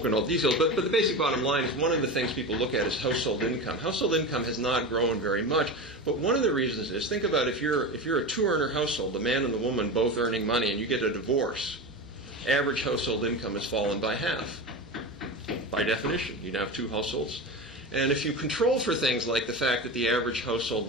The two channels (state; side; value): normal; both; correlation 0.24